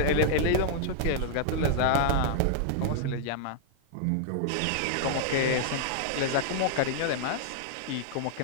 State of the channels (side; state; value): both; different; correlation -0.01